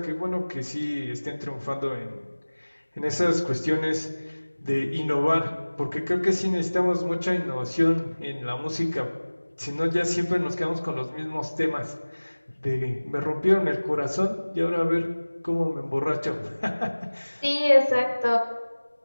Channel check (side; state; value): both; inverted; correlation -1.00